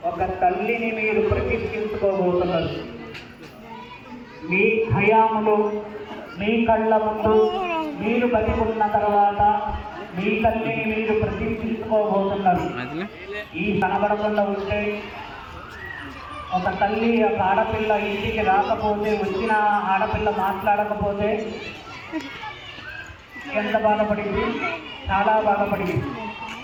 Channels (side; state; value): both; identical; correlation 1.00